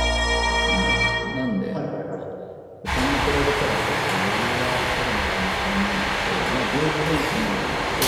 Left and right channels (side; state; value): both; identical; correlation 1.00